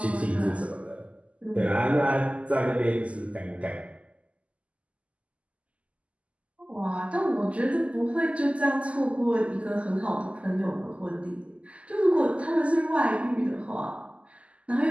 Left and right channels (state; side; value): late; left; 0.063 ms